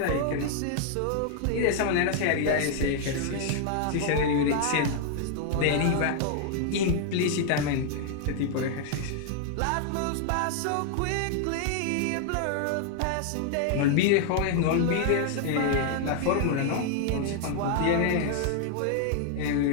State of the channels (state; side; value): different; both; correlation 0.00